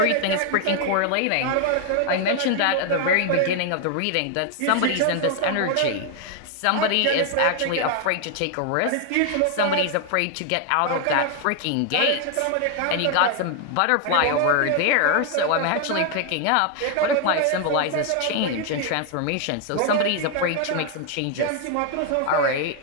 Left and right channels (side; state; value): both; different; correlation 0.00